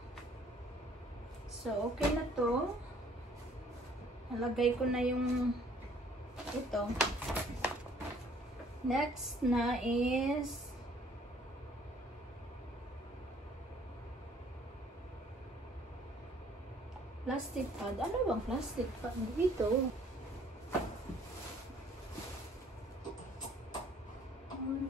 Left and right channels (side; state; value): both; normal; correlation 0.59